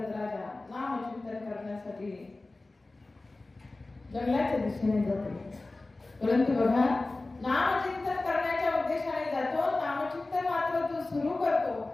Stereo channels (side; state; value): right; quieter; 3.1 dB